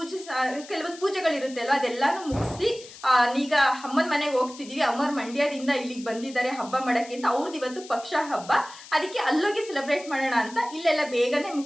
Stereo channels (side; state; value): left; noise; hiss, 17 dB below the sound